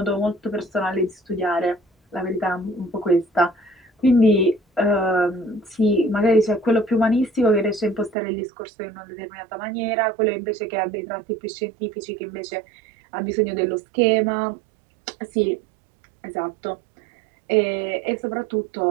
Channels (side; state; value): left; drops out; at 8.2 s